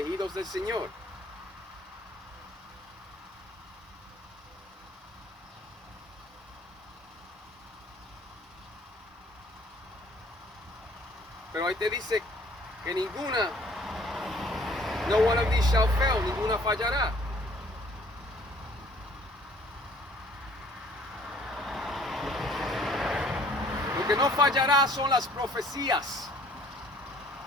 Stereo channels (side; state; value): both; normal; correlation 0.57